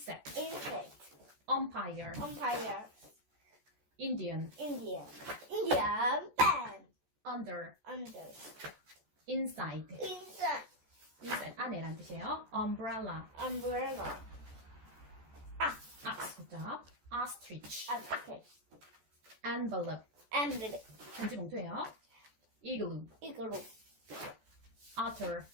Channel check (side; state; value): left; late; 14 ms